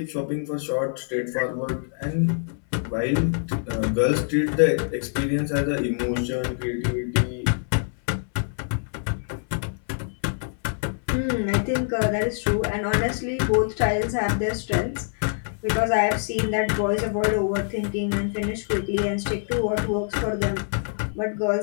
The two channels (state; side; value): silent; right; 62 dB below the other